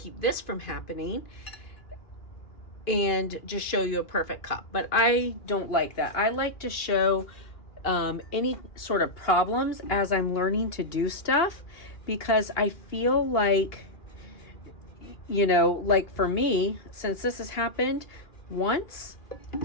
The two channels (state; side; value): late; right; 2.4 ms